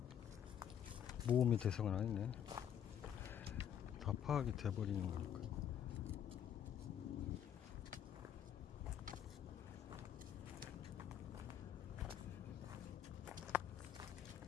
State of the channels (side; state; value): right; quieter; 9.4 dB